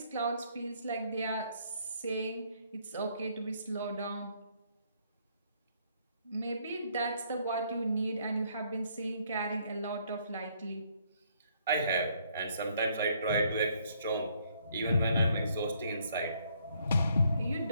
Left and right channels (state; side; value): inverted; both; correlation -0.68